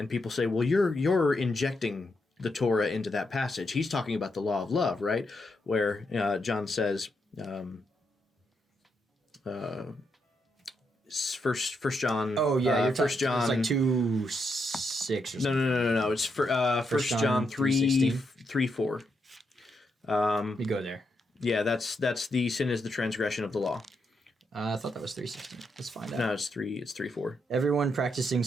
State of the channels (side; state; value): both; normal; correlation 0.81